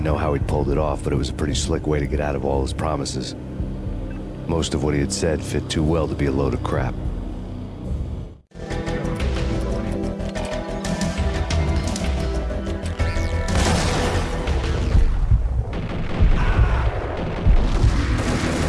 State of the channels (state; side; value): identical; both; correlation 1.00